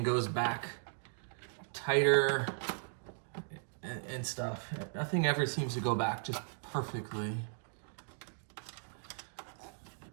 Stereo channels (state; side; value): silent; left; digital silence